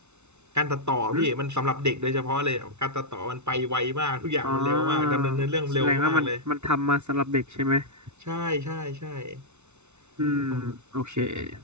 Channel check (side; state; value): left; late; 0.82 ms